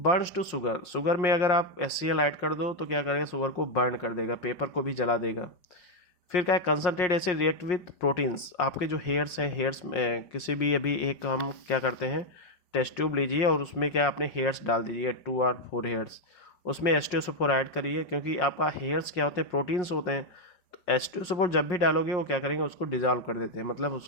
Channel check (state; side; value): late; right; 5.6 ms